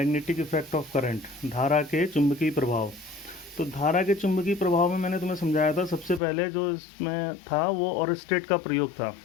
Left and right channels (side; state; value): right; drops out; at 6.2 s